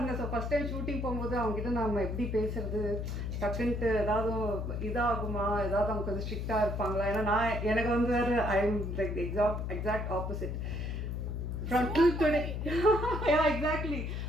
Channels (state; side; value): noise; left; hum, 3 dB below the sound